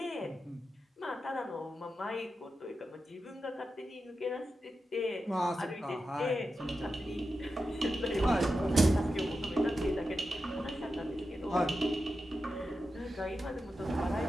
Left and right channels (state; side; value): normal; both; correlation 0.90